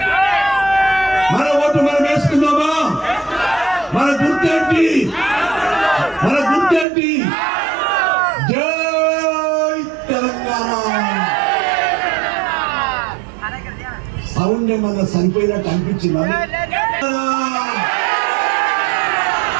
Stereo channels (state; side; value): drops out; left; at 6.9 s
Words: మన ఓటు మనం వేసుకుందామా? మన గుర్తేంటి? మన గుర్తేంటి? జై తెలంగాణ. సౌండ్ ఏమన్నా సరిపోయినట్టు అనిపించిందా?